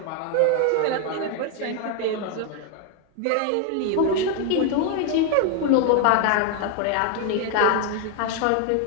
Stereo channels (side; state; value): both; different; correlation 0.01